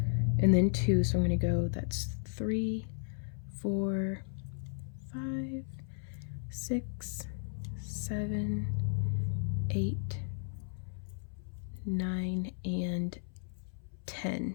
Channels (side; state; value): right; silent; 55 dB below the other